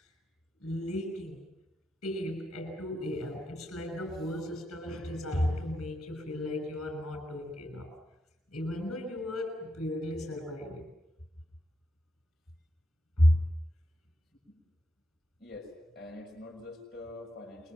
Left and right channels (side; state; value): both; normal; correlation 0.82